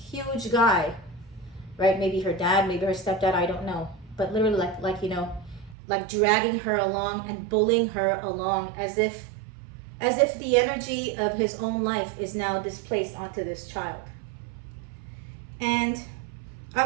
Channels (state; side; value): drops out; left; at 5.8 s